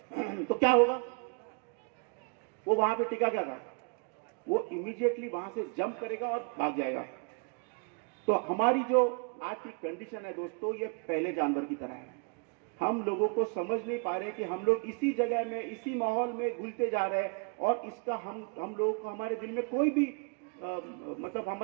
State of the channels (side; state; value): left; quieter; 36.5 dB